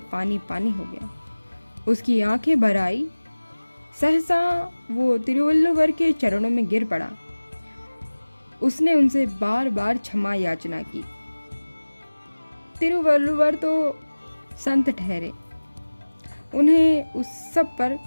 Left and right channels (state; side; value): inverted; both; correlation -1.00